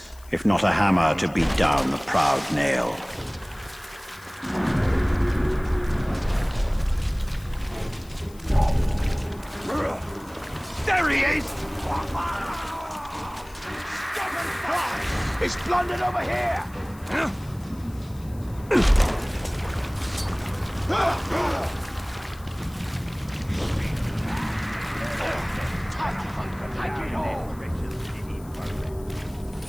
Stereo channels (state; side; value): noise; left; hiss, 24 dB below the sound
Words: if not a hammer to beat down the proud nail? There he is! He's blundered over here! Take it all!